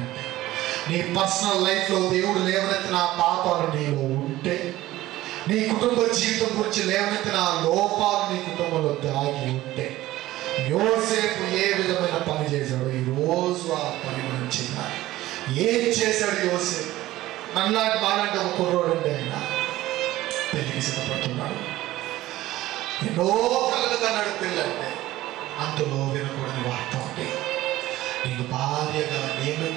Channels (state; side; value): quieter; left; 16.1 dB